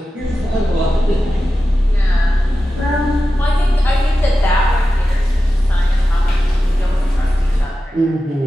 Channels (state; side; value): normal; both; correlation 0.93